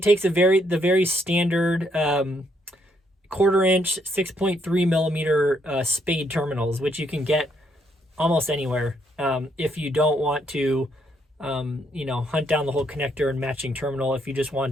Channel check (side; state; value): both; normal; correlation 0.73